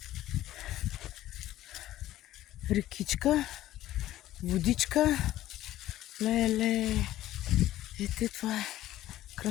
Рекичка, водичка. Леле. Ето това е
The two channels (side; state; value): right; quieter; 14.3 dB